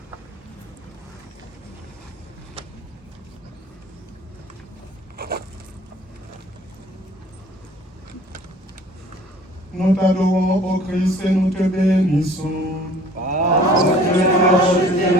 Nous t'adorons, ô Christ, et nous te bénissons. Parce que tu as acheté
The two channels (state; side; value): normal; both; correlation 0.51